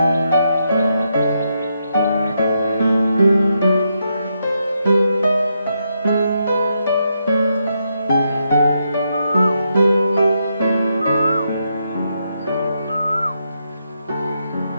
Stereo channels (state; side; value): inverted; both; correlation -0.81